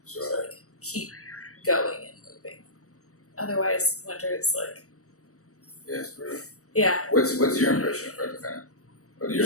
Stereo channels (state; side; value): late; right; 0.65 ms